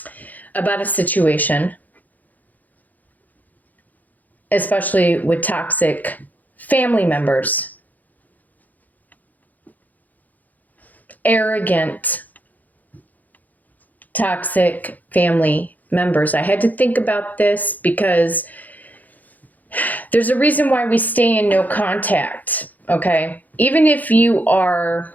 about a situation, especially with toxic family members. Arrogant, toxic family members. I had to think about this because there's a reason why we stay in no contact, okay? Even if you are,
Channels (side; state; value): right; late; 0.081 ms